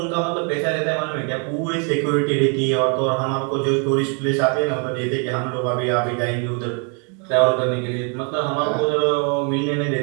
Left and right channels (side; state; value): left; quieter; 38.1 dB